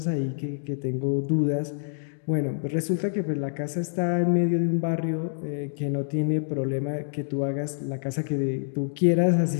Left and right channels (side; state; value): right; silent; digital silence